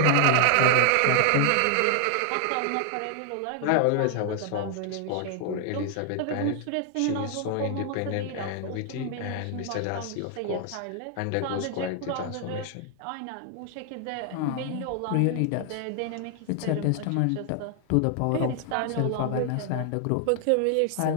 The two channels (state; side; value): different; both; correlation 0.00